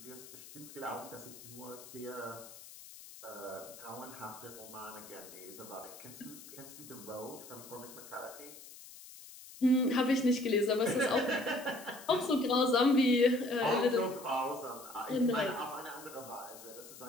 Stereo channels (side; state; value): left; noise; hiss, 16 dB below the sound